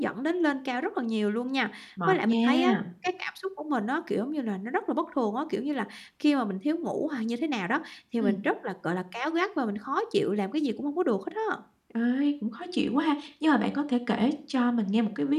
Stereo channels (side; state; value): both; identical; correlation 1.00